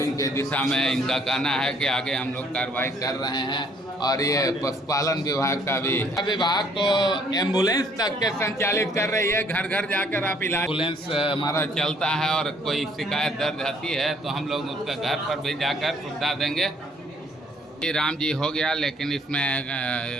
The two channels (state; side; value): normal; both; correlation 0.63